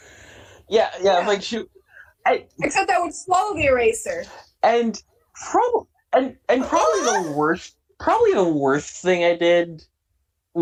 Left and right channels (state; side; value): identical; both; correlation 1.00